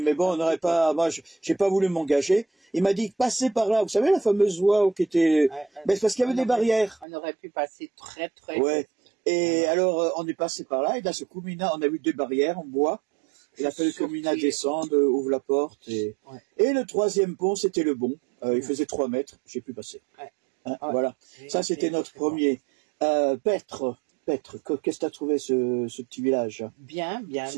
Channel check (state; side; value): drops out; left; at 7.1 s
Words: mais bon, on n'aurait pas. Moi, j'ai pas voulu m'engager. Il m'a dit passez par là. Vous savez la fameuse voie qui était. Mais c'est parce qu'il y avait des barrières. On aurait pu passer très très. Ouais. Et alors, on est passé par là. Et d'un seul coup, Mina, on a vu des barrières en bois. Il a fallu que Mina descende, ouvre la porte. Et le troisième pont, c'était le bon. Il faisait 3 mètres. J'ai pu passer. Hein, voilà. Ça, c'était notre premier. Petre, qu'est-ce que t'as trouvé ce petit village? Bien.